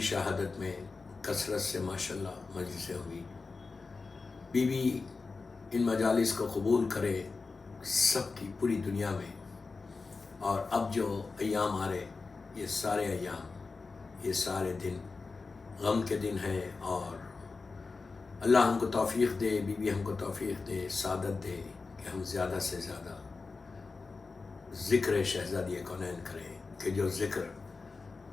شہادت میں کثرت سے ماشاءاللہ مجلسیں ہوئی. بی بی ان مجالس کو قبول کرے سب کی پوری دنیا میں. اور اب جو ایام آ رہے، یہ سارے ایام، یہ سارے دن غم کے دن ہیں. اور اللہ ہم کو توفیق دے، بی بی ہم کو توفیق دے، سعادت دے کہ ہم زیادہ سے زیادہ ذکر شہزادی کونین کریں. کہ جو ذکر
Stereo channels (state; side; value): quieter; right; 4.2 dB